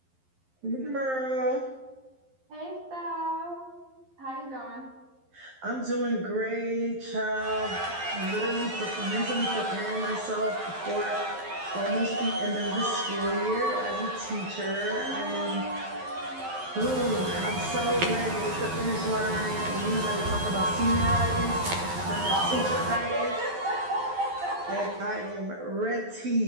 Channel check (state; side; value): late; left; 11 ms